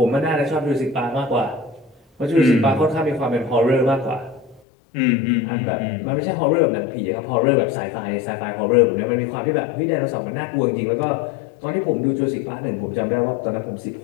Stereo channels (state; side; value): drops out; right; at 4.6 s